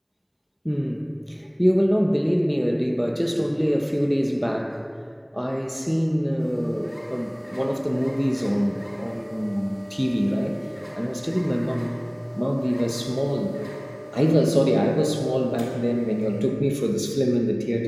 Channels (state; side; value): identical; both; correlation 1.00